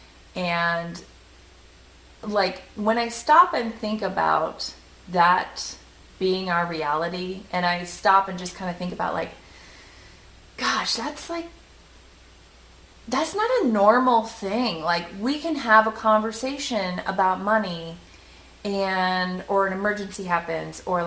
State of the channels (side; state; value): both; identical; correlation 1.00